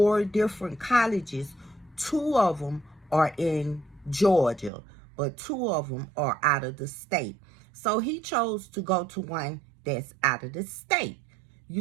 different colleges. 2 of them are in Georgia, but 2 of them are out of the state. So he chose to go to one that's out of the state.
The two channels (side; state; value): left; drops out; at 4.7 s